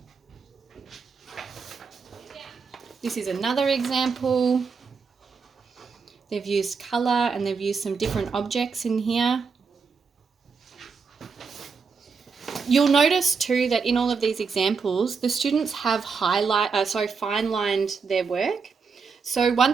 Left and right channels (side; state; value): left; quieter; 5.3 dB